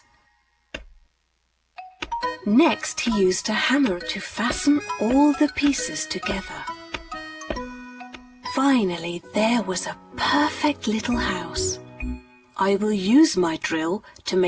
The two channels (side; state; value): both; identical; correlation 1.00